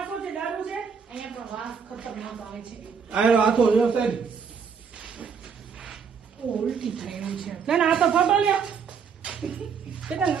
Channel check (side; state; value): left; quieter; 6.3 dB